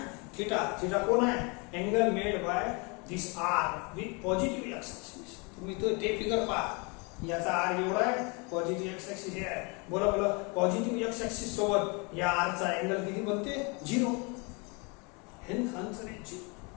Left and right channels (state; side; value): quieter; right; 30.8 dB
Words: थीटा. थीटा कोण आहे angle made by this R with positive X axis. तुम्ही तो ते फिगर पहा. याचा आर एवढा आहे, पॉझिटिव्ह एक्स ऍक्सिस हे आहे. बोला बोला पॉझिटिव्ह एक्स ऍक्सिस सोबत या आर चा अँगल किती बनते 0. हेच आन्सर आहे 0.